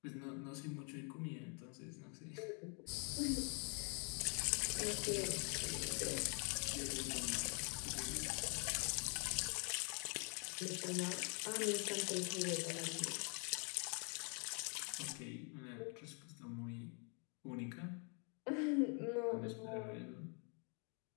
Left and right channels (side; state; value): right; quieter; 37.5 dB